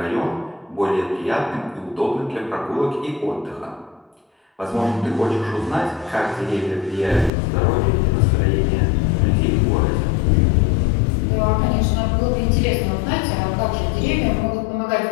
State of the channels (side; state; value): right; drops out; at 7.3 s